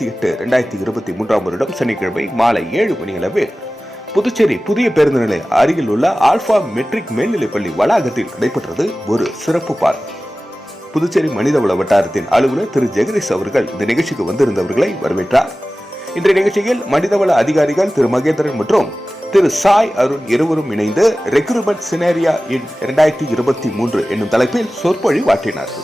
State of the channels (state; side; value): normal; both; correlation 0.96